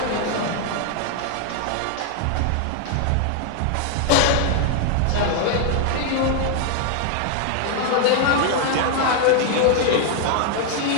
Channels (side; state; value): both; different; correlation 0.00